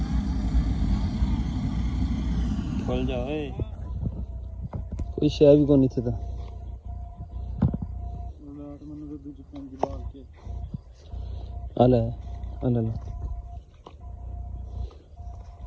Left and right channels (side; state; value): both; identical; correlation 1.00